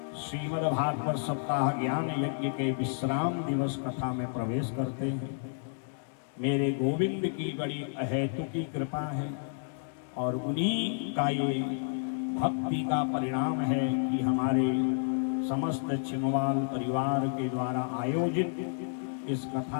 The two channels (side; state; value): right; silent; digital silence